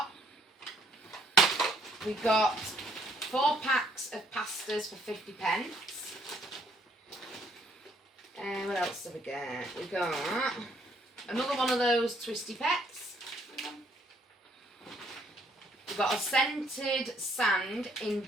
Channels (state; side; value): normal; both; correlation 0.66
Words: We got 4 packs of pastas for 50p. And what else did we get? We got another one of those twisty pets. We got a scented sand in